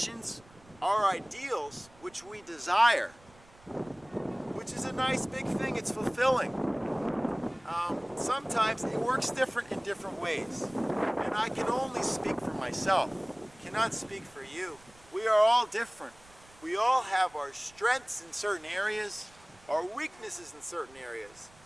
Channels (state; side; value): noise; right; rumble, 26 dB below the sound